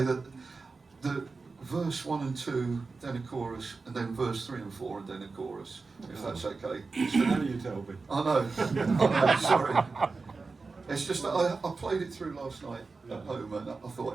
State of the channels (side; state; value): left; quieter; 4.2 dB